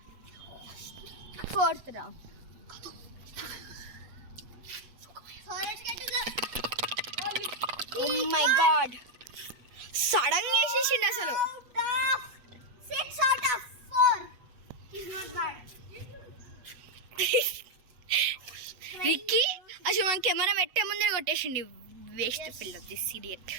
4th round. So let's get to the Oh my god, sudden గా వేసేసిండు అసలు. out of 6 out of 4. He's not bad. Ricky అసలు మన కెమెరా పెట్టే ముందే కొట్టేసిండి. వేస్ట్ పిల్ల, this idiot.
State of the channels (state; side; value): late; left; 8.2 ms